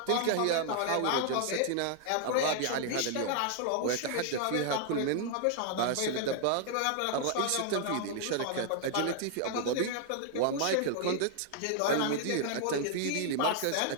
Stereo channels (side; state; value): both; different; correlation 0.00